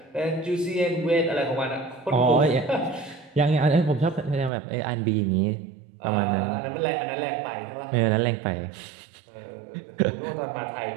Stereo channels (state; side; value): drops out; left; at 4.5 s